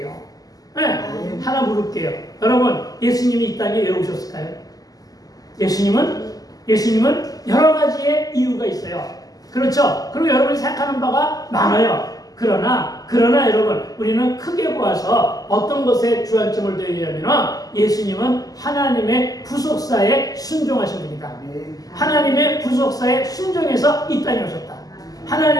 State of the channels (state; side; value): late; right; 0.17 ms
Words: 하나 물을게요. 여러분, 예수님이 이 땅에 왜 오셨을까요? 예수님은 여러 가지의 이유가 있어요. 그렇죠? 그리고 여러분이 생각하는 바가 많아요. 그러나 여러분, 우리는 크게 보아서 어떤 것에 주안점을 둬야 되냐면 예수님은 하나님의 구속사에 순종하신 분이다. 하나님의 구속사에 순종해서 이 땅에 오셨다.